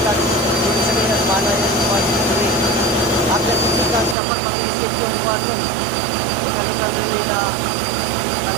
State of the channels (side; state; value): left; drops out; at 4.2 s